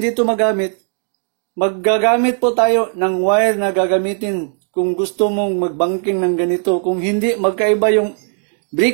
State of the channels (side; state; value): left; silent; 56 dB below the other